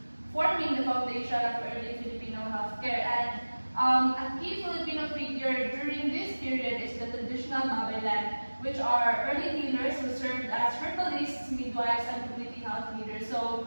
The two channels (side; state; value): both; inverted; correlation -1.00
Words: forming the foundation of early Filipino healthcare. And a key Filipino figure during this period is the traditional Babaylan, which are early healers who served as herbalists, midwives, and community health leaders.